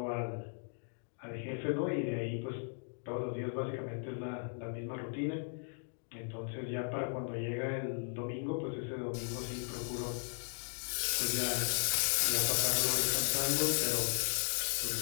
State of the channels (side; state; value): right; silent; 53 dB below the other